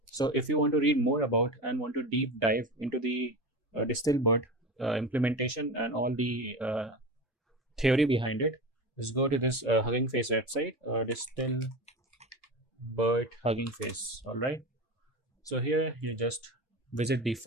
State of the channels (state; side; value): normal; both; correlation 0.27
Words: So if you want to read more about and want to deep dive into the DistilBERT implementation and all the theory behind it, just go to this Hugging Face website, DistilBERT Hugging Face. All right. So here you just visit the